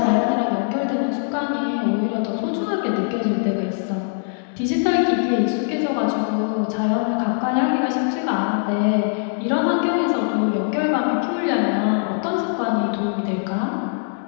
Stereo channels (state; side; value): silent; right; 64 dB below the other